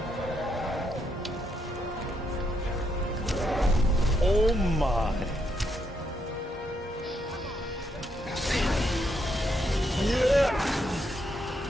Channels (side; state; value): both; normal; correlation 0.77